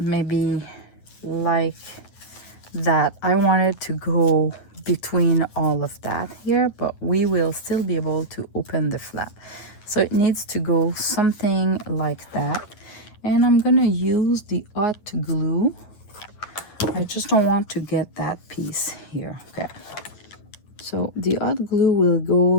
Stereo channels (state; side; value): late; right; 9.5 ms